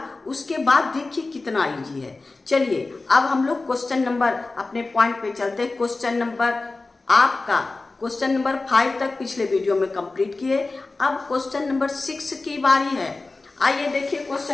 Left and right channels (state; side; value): quieter; right; 3.5 dB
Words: उसके बाद देखिए कितना इजी है। चलिए अब हम लोग क्वेश्चन नंबर अपने पॉइंट पे चलते हैं। क्वेश्चन नंबर 5 तक पिछले वीडियो में कंप्लीट किए। अब क्वेश्चन नंबर 6 की बारी है। आइए देखिए